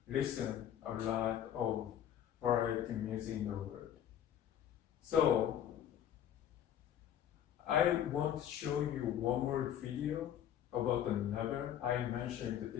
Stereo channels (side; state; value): right; quieter; 10.3 dB